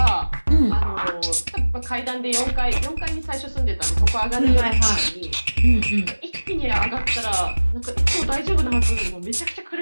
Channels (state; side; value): inverted; both; correlation -1.00